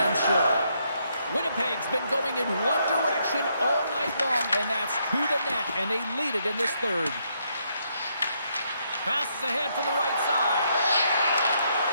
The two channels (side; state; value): both; inverted; correlation -0.75